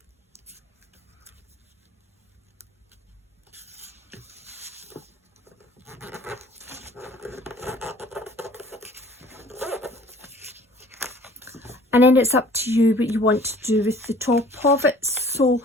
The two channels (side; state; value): both; normal; correlation 0.51